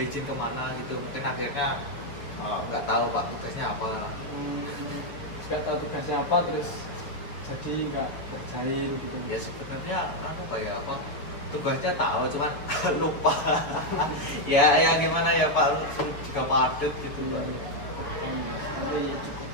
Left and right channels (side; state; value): right; late; 6.5 ms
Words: izin kemana gitu, mungkin akhirnya nggak tahu, Pak, tugasnya apa. Nggak tahu tugasnya apa terus jadi nggak kerjain gitu. Ya sebenarnya apa ya, apa tugasnya tahu cuman lupa. Ya gimana ya, Pak, juga padat gitu, Pak. Tapi ya cukup